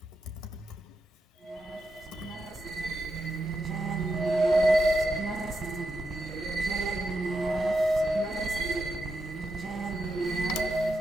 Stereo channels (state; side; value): normal; both; correlation 0.85